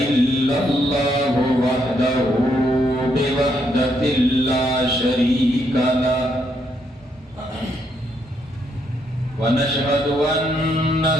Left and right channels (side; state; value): both; normal; correlation 0.75